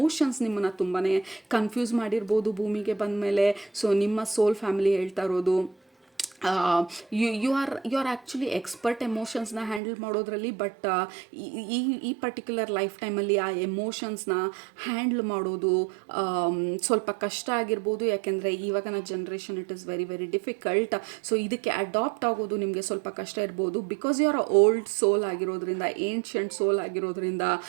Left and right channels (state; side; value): drops out; left; at 9.8 s